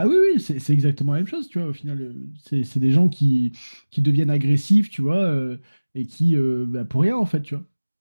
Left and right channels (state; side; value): inverted; both; correlation -1.00